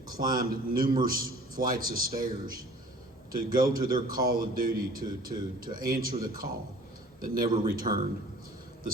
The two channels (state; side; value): normal; both; correlation 0.49